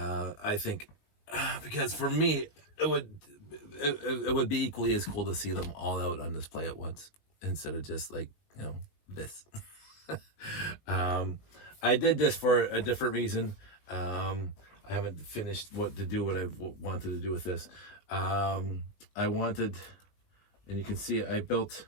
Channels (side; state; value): right; late; 19 ms